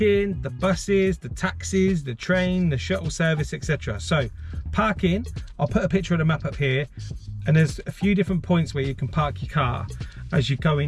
the buses, the taxis, the train, the shuttle service, etc. So parking, I'll put a picture of the map up here, and there's a few different points where you can park your car as you go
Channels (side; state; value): both; identical; correlation 1.00